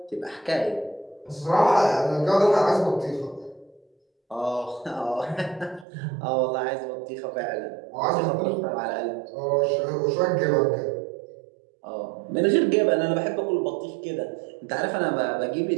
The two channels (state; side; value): drops out; left; at 5.9 s